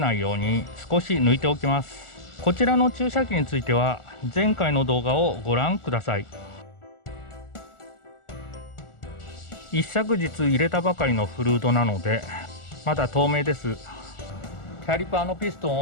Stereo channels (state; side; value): late; right; 1.4 ms